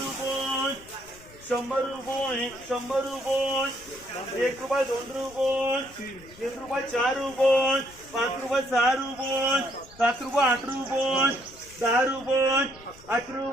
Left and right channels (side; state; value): left; noise; rumble, 23 dB below the sound